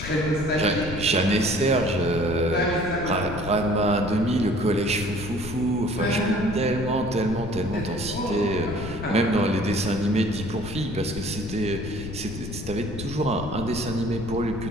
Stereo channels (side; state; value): left; noise; rumble, 8 dB below the sound